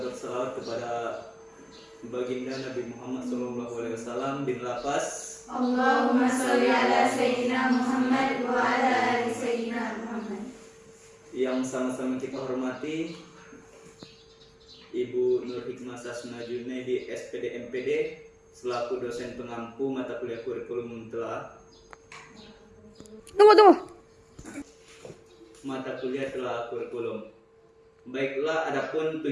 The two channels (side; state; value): both; identical; correlation 1.00